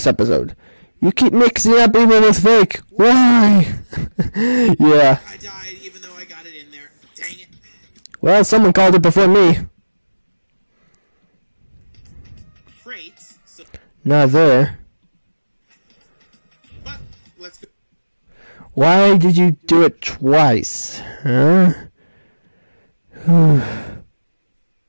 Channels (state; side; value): inverted; both; correlation -1.00